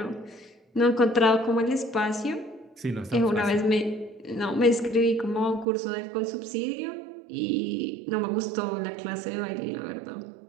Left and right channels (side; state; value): left; drops out; at 5.7 s